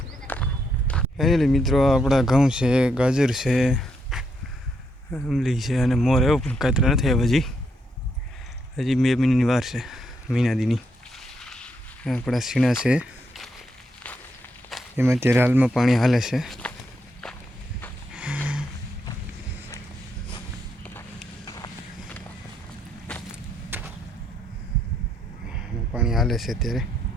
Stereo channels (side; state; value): both; normal; correlation 0.77